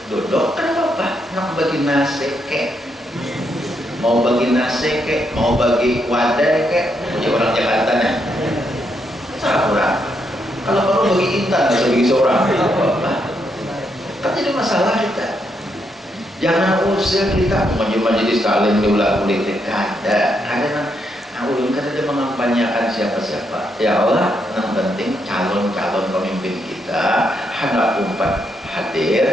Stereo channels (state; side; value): normal; both; correlation 0.78